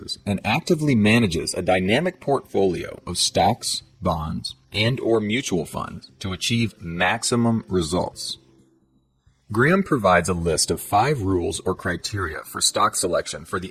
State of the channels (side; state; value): both; identical; correlation 1.00